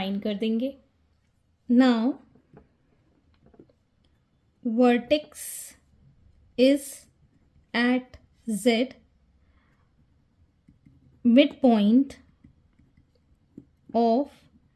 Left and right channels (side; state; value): both; identical; correlation 1.00